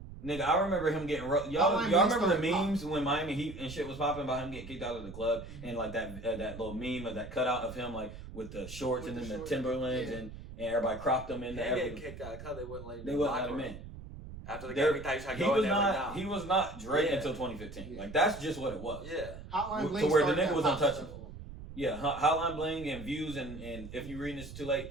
Nigga, I remember him getting y'all remember the memes when Miami Heat and shit was popping about him getting kicked out of the club and like that little meme of that cutout of him like with the shorts With and the then the shorts, Timberlands yeah. and everybody cropped him in They there. get kicked out because they wouldn't let him. They wouldn't let him in. After the There- game, he thought he tried to He go was in there. not. Like, He was not Drake Yeah. until 2015. Yeah. Like that's just what it was. yeah. Hotline To Bling where the started nigga that was pop untouchable. stuff. Yeah, Hotline Bling and Views and if you reading this too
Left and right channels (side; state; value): right; noise; rumble, 13 dB below the sound